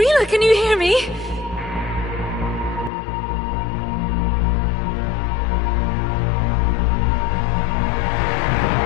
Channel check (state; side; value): drops out; right; at 2.9 s